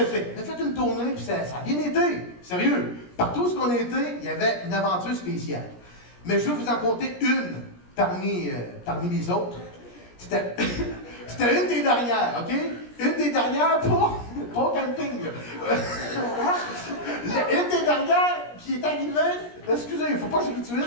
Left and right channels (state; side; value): late; right; 17 ms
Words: fait. On a fait une tournée, puis ça a bien été. Sérieux. Partout où on a été, il y avait une aventure spéciale. Mais je vais vous en compter une parmi les autres. C'était une des dernières, OK? Une des dernières pour camping. Une des dernières qui est arrivée. Excusez, il ne faut pas que je